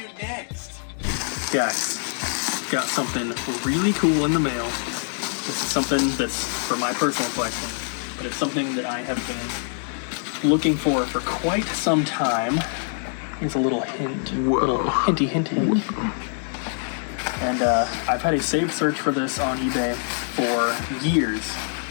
next. Guys, got something really cool in the mail. This is something that's for my personal collection, but it's something that I have been looking for quite some time. Here's a little hint. Whoa. Little hinty hint hint. And I've had a saved search for this on eBay for years,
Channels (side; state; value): right; silent; 62 dB below the other